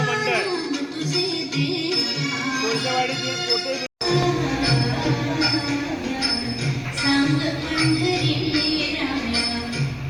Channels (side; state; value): both; identical; correlation 1.00